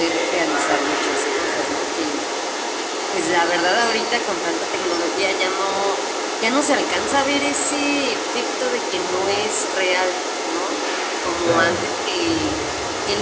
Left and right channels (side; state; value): both; identical; correlation 1.00